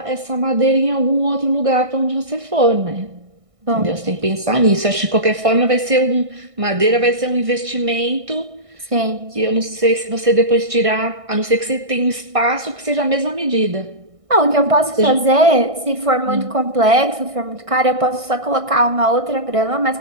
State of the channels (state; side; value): late; left; 1.6 ms